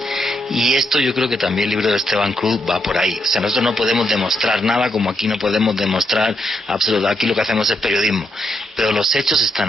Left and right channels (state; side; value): normal; both; correlation 0.80